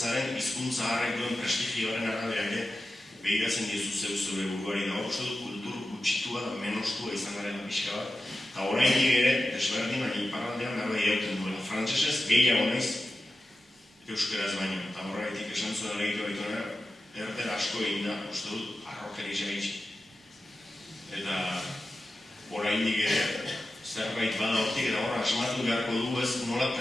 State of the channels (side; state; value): both; normal; correlation 0.92